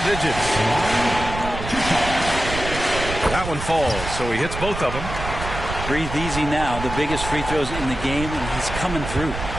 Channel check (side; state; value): right; noise; rumble, 7 dB below the sound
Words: That one falls, so he hits both of them. Breathe easy now. The biggest free throws in the game, and he's coming through.